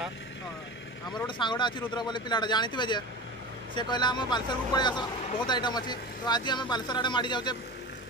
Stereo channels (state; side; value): normal; both; correlation 0.30